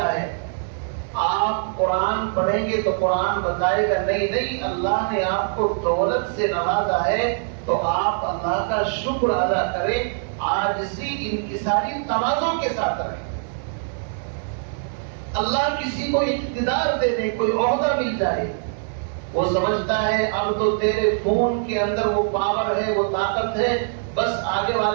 ہے. آپ قرآن پڑھیں گے تو قرآن بتائے گا نہیں اللہ نے آپ کو دولت سے نوازا ہے تو آپ اللہ کا شکر ادا کریں، عاجزی انکساری تواضع کے ساتھ رہیں. اللہ کسی کو اقتدار دے دے، کوئی عہدہ مل جائے، وہ سمجھتا ہے اب تو تیرے فون کے اندر وہ پاور ہے، وہ طاقت ہے، بس آگے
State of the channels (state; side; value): silent; left; digital silence